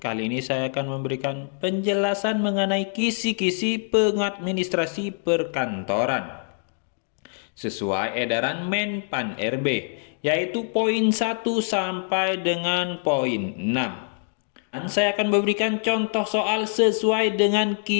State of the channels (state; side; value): silent; right; 62 dB below the other